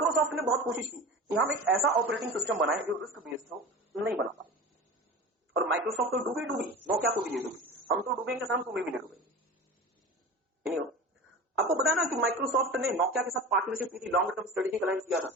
ने बहुत कोशिश की कि हम एक ऐसा ऑपरेटिंग सिस्टम बनाए जो रिस्क बेस्ड हो, नहीं बना पाए। और माइक्रोसॉफ्ट तो डूबी नोकिया को भी ले डूबी, हम तो डूबेंगे सर, तुम्हें भी ले डूबेंगे। आपको पता है ना कि माइक्रोसॉफ्ट ने नोकिया के साथ पार्टनरशिप की थी, लॉन्ग टर्म स्ट्रेटेजिक अलायंस किया था,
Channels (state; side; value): normal; both; correlation 0.33